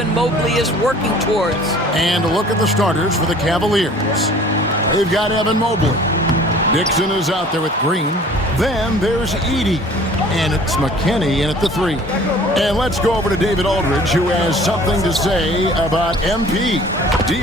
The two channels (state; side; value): normal; both; correlation 0.49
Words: Mobley is working towards. And a look at the starters for the Cavaliers. They've got Evan Mobley. Dixon is out there with Green. Then there's Edey. And it's McKinney in at the three. And let's go over to David Aldridge, who has something to say about MP.